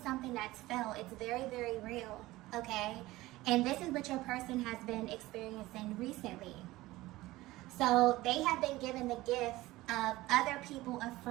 something that's felt. It's very, very real, okay? And this is what your person has been experiencing recently. So they have been given the gift of other people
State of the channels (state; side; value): quieter; left; 18.3 dB